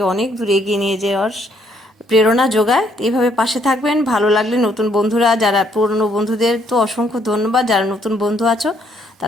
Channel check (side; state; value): both; normal; correlation 0.69